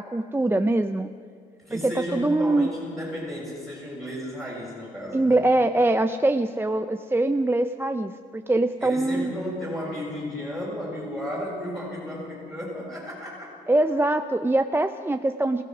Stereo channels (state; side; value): normal; both; correlation 0.87